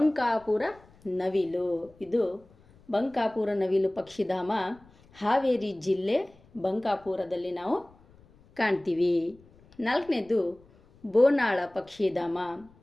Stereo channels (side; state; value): left; noise; rumble, 28 dB below the sound